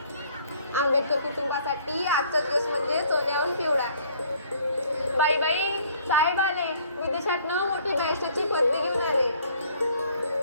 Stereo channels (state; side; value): inverted; both; correlation -0.59